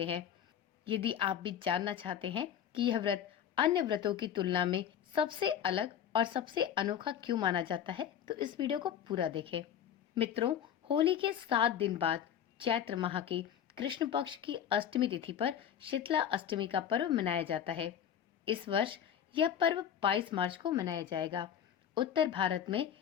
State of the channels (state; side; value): quieter; right; 9.4 dB